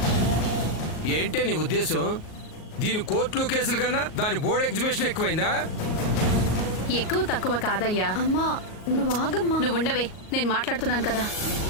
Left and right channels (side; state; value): right; late; 38 ms